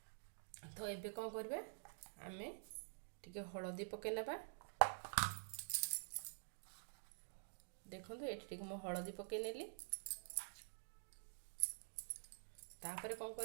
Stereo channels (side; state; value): left; silent; digital silence